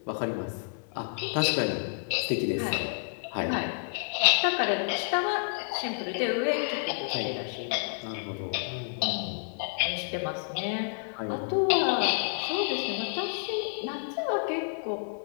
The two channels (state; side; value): silent; right; 58 dB below the other